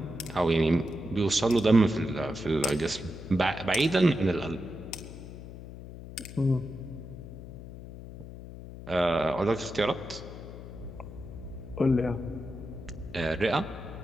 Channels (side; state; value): left; noise; hum, 13 dB below the sound